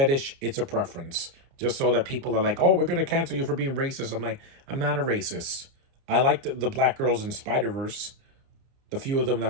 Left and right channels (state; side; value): late; left; 29 ms